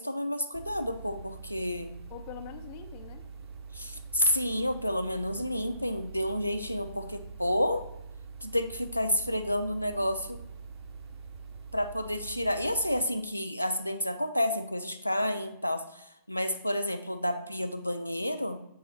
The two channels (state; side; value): inverted; both; correlation -0.79